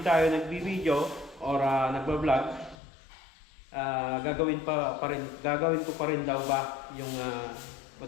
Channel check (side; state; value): right; drops out; at 2.8 s